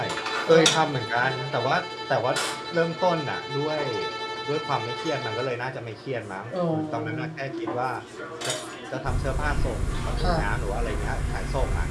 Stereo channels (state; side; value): identical; both; correlation 1.00